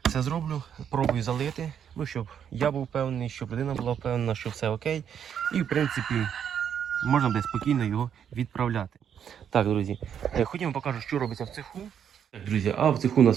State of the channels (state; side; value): quieter; left; 8.5 dB